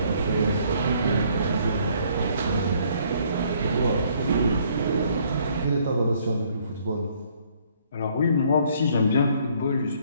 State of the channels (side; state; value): both; inverted; correlation -0.64